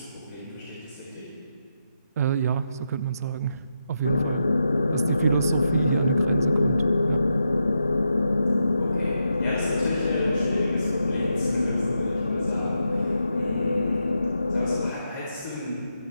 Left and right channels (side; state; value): both; inverted; correlation -0.84